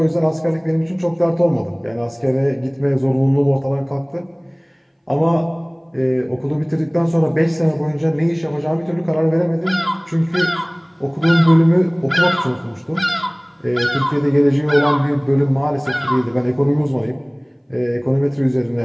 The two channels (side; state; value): both; identical; correlation 1.00